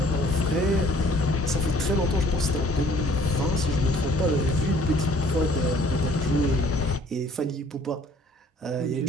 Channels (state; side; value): normal; both; correlation 0.57